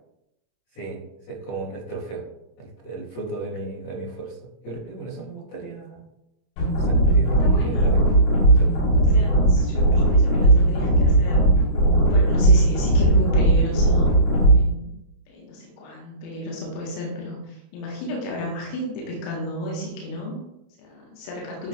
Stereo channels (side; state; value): right; late; 26 ms